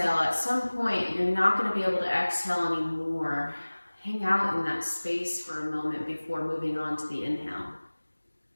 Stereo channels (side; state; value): both; inverted; correlation -1.00